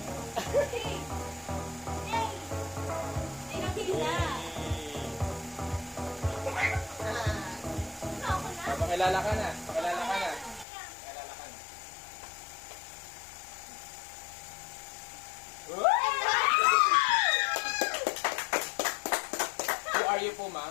Pakilala ka na. Pakilala ka na. Pakilala ka na. Who are you po,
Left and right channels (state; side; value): drops out; right; at 10.7 s